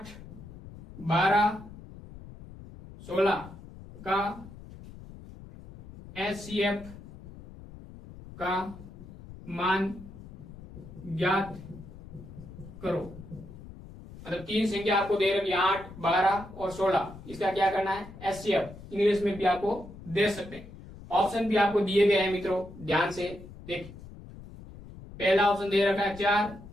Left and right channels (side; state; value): left; noise; rumble, 16 dB below the sound